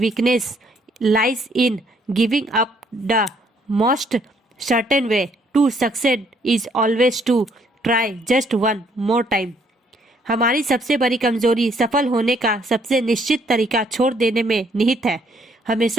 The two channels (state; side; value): normal; both; correlation 0.67